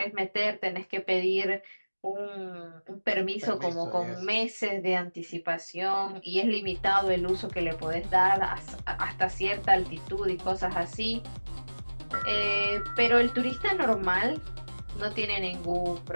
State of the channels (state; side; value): inverted; both; correlation -1.00